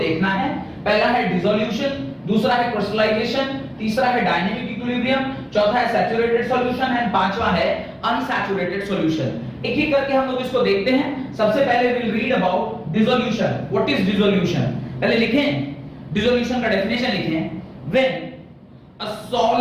है। पहला है डिसोल्यूशन, दूसरा है क्रिस्टलाइजेशन, तीसरा है डायनेमिक इक्विलिब्रियम, चौथा है सैचुरेटेड सॉल्यूशन एंड पांचवा है अनसैचुरेटेड सॉल्यूशन। एक एक करके हम लोग इसको देखते हैं। सबसे पहले will read about dissolution. What is dissolution? पहले लिखें डिसोल्यूशन का डेफिनेशन लिखें। When a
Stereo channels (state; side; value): identical; both; correlation 1.00